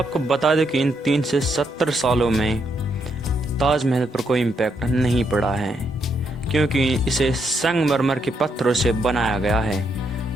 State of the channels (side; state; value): both; normal; correlation 0.77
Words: बता दें कि इन 370 सालों में ताजमहल पर कोई इम्पैक्ट नहीं पड़ा है, क्योंकि इसे संगमरमर के पत्थरों से बनाया गया है।